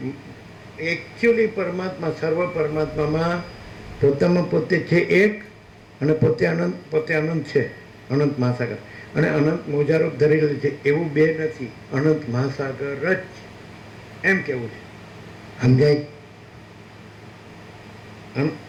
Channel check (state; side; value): identical; both; correlation 1.00